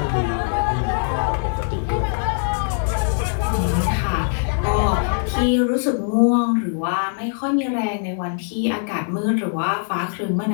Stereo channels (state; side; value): silent; right; digital silence